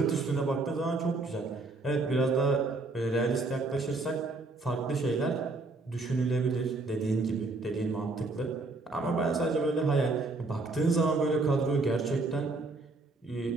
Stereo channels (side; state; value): left; quieter; 3.4 dB